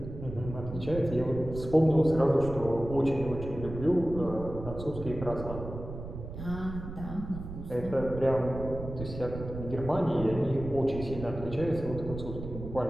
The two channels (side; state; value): right; noise; rumble, 10 dB below the sound